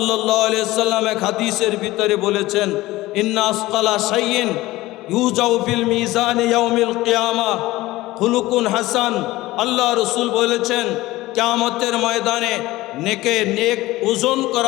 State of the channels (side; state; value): right; quieter; 18.2 dB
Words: আলাইহি ওয়াসাল্লাম এক হাদিসের ভিতরে বলেছেন, ইন্না আসকালা শাইইন ইউজাউ ফিল মিজান ইয়াউমিল কিয়ামাহ খুলুকুন হাসান। আল্লাহ রাসূল বলেছেন, কিয়ামতের ময়দানে নেক ওজন